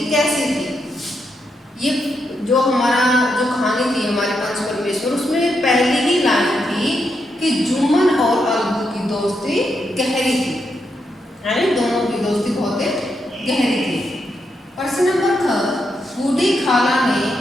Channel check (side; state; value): both; normal; correlation 0.82